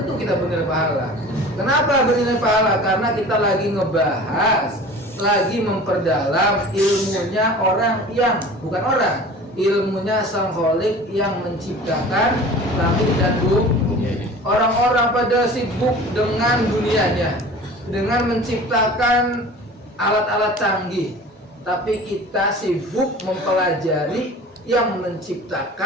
kita bernilai pahala. Kenapa bernilai pahala? Karena kita lagi ngebahas, lagi memperdalam ilmunya orang yang bukan orang, ilmunya Sang Khalik yang menciptakan langit dan bumi. Orang-orang pada sibuk dengan dunianya, dengan menciptakan alat-alat canggih, tapi kita sibuk mempelajari yang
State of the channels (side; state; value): both; normal; correlation 0.41